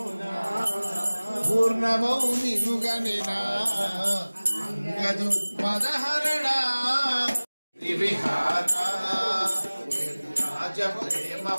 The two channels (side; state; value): both; inverted; correlation -1.00